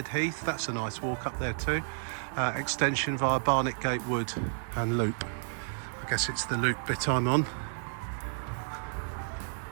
Heath. That's a nice walk up there too. Extension via Barnet Gate Wood and loop. I guess it's the loop bit I'm on.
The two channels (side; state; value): left; silent; digital silence